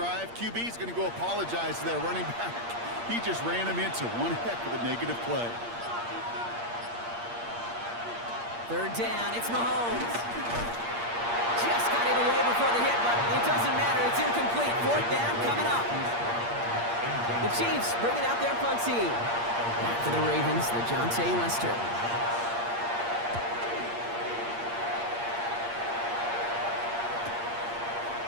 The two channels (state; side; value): late; left; 8.6 ms